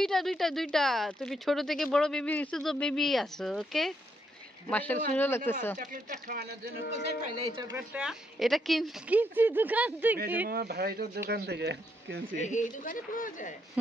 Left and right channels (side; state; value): both; normal; correlation 0.76